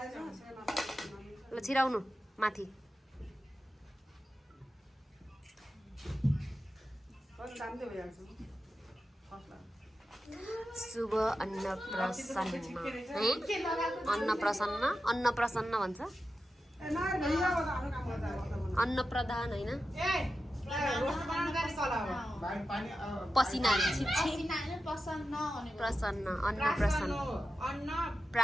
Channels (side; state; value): both; normal; correlation 0.91